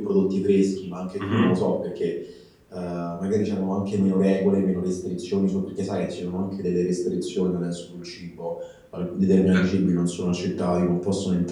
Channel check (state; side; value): identical; both; correlation 1.00